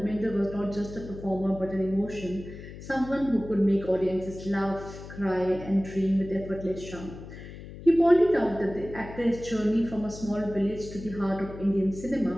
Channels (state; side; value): noise; left; hum, 13 dB below the sound